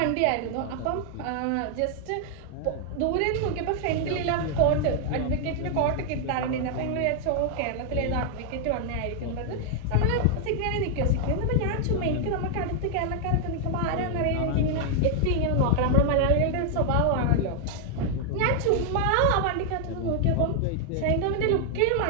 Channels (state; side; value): different; both; correlation 0.00